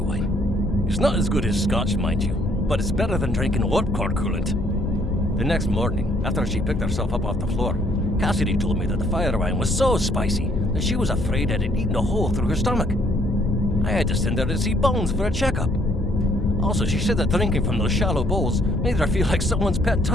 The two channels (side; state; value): both; normal; correlation 0.66